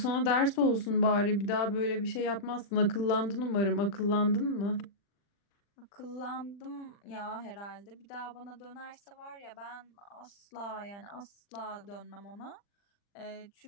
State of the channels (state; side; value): late; right; 40 ms